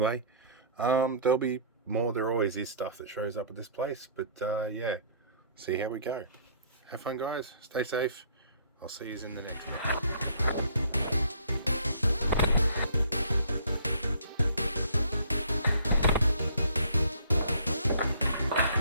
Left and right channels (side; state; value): both; inverted; correlation -0.55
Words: there'll be more. There always is stuff that shows up at this place, but yeah, see how we go. Have fun, guys. Stay safe. I'll see you in the next one.